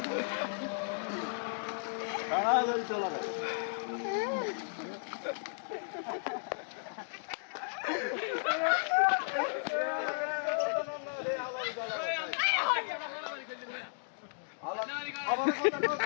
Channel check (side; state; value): right; silent; digital silence